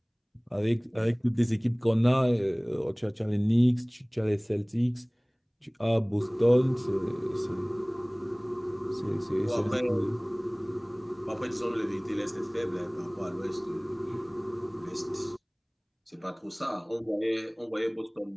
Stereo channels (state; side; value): identical; both; correlation 1.00